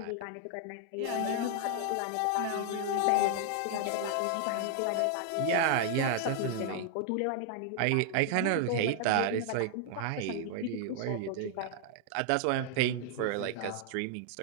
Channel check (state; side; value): different; both; correlation 0.00